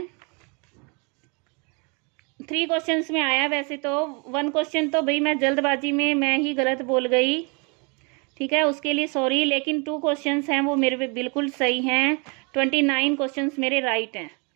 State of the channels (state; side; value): quieter; left; 32.9 dB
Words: 3 क्वेश्चंस में आया वैसे तो, 1 क्वेश्चन तो भाई मैं जल्दबाजी में मैं ही गलत बोल गई। ठीक है, उसके लिए सॉरी। लेकिन 2 क्वेश्चंस हैं वो मेरे बिल्कुल सही हैं। 29 क्वेश्चंस मेरे राइट हैं